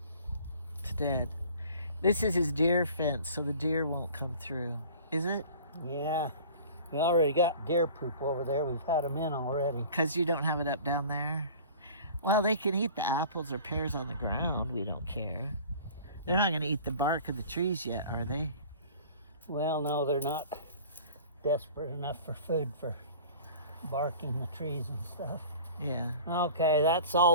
It's dead. This is his deer fence, so the deer won't come through. Is it? Yeah, we already got deer poop over there. We've had them in already. Because you don't have it up down there? Well, they can eat the apples or pears on the ground. We don't care. They're not going to eat the bark of the trees yet, are they? Well, no, they're not desperate enough for food for barking the trees and stuff. Yeah. Okay, that's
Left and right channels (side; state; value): both; inverted; correlation -0.44